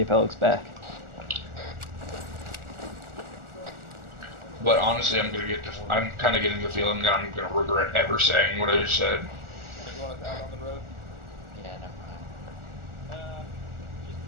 back. But honestly, I'm kind of getting the feeling that I'm gonna regret ever saying what I just said. Yeah, never mind.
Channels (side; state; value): left; late; 1.4 ms